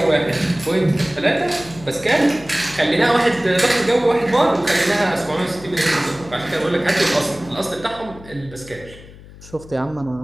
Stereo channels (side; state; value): left; noise; hum, 19 dB below the sound